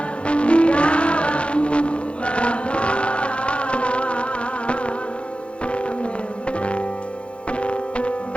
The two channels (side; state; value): right; late; 0.059 ms